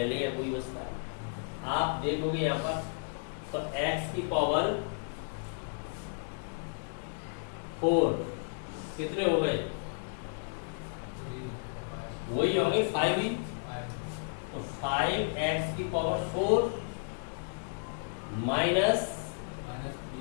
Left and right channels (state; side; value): silent; right; digital silence